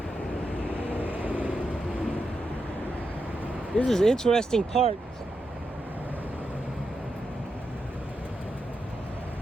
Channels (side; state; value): both; normal; correlation 0.86